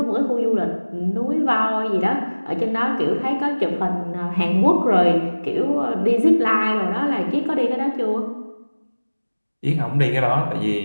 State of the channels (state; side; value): inverted; both; correlation -1.00